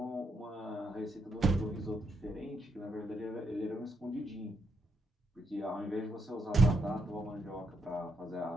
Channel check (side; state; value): both; normal; correlation 0.79